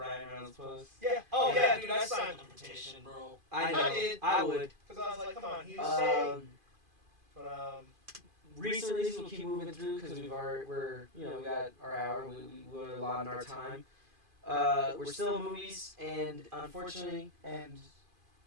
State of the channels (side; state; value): left; late; 2.5 ms